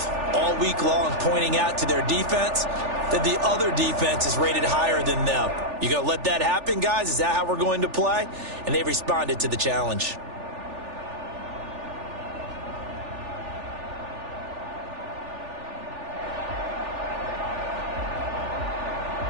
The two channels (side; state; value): left; late; 3.4 ms